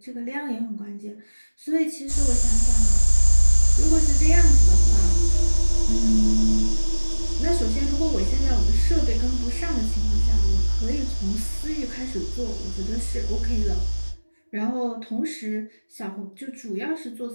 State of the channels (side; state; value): both; inverted; correlation -1.00